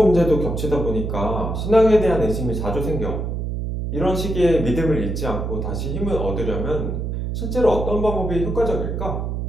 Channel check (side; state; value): right; noise; hum, 3 dB below the sound